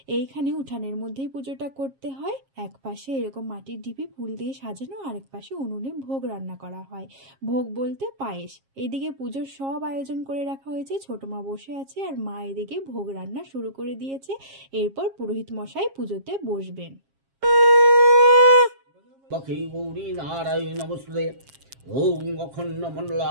এইখানে উঠানের মধ্যেই পুজোটা করতে হয়। এক পাশে এরকম মাটির ঢিপি ফুল দিয়ে সাজানো, আরেক পাশে উনুনে ভোগ রান্না করা হয়। ভোগ বলতে পায়েস। এইদিকে পুজোর সব আয়োজন করে রাখা হয়েছে, ছোট মা বসে আছে আর মা এদিকে ভোগ রান্না শুরু করে দিয়েছে। এরপর পুরোহিত মশাই পুজোতে বসবেন। ওং অখণ্ড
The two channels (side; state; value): left; late; 7.4 ms